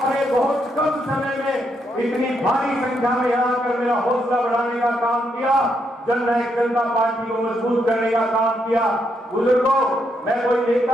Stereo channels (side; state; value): both; normal; correlation 0.78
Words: बहुत कम समय में इतनी भारी संख्या में यहाँ आकर मेरा हौसला बढ़ाने का काम किया, जननायक जनता पार्टी को मजबूत करने का काम किया। बुजुर्गों, मैं कोई